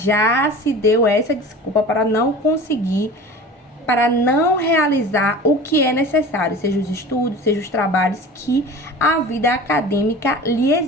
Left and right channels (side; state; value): both; normal; correlation 0.38